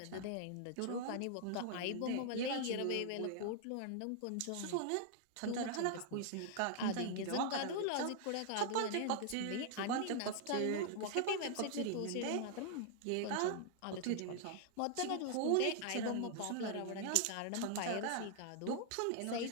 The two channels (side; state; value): both; different; correlation 0.00